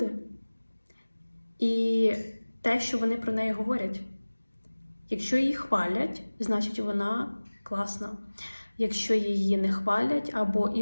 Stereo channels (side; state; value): both; inverted; correlation -1.00